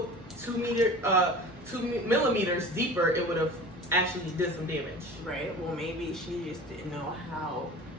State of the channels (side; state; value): both; normal; correlation 0.38